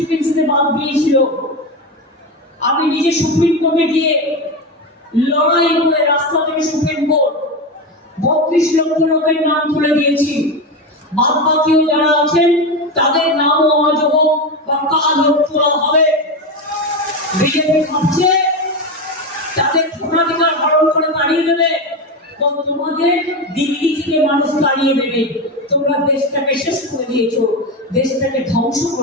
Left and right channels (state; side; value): normal; both; correlation 0.17